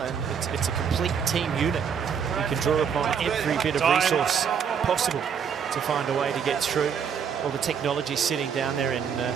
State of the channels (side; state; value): left; quieter; 7.2 dB